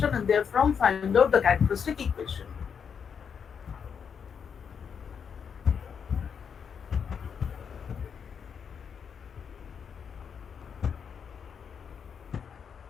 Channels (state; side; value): quieter; right; 6.9 dB